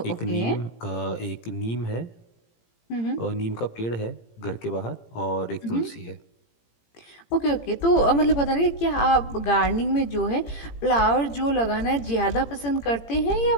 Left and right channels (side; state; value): right; late; 18 ms